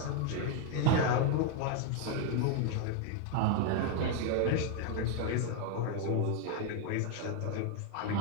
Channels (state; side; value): different; both; correlation 0.01